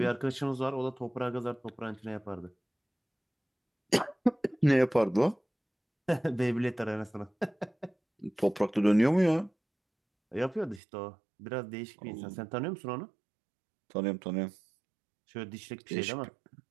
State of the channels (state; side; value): drops out; left; at 10.8 s